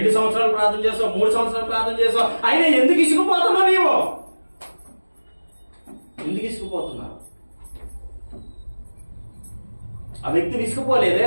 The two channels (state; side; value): inverted; both; correlation -1.00